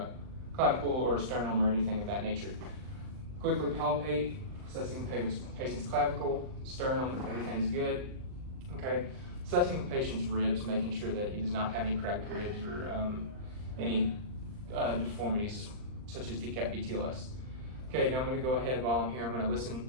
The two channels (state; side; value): late; left; 39 ms